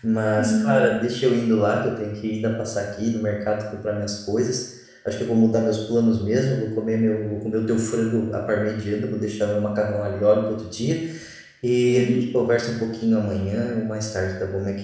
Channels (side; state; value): both; identical; correlation 1.00